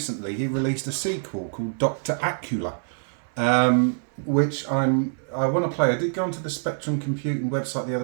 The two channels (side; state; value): left; silent; 58 dB below the other